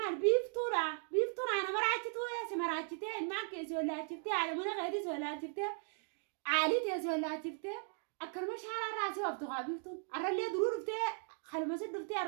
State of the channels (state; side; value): silent; left; 53 dB below the other